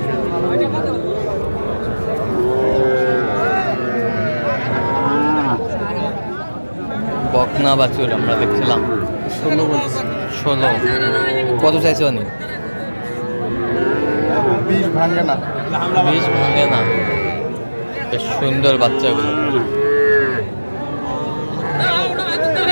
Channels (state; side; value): inverted; both; correlation -1.00